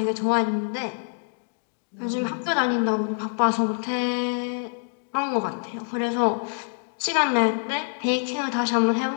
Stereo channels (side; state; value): right; silent; digital silence